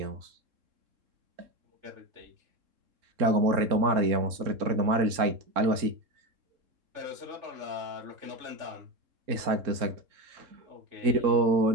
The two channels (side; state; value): left; late; 3.7 ms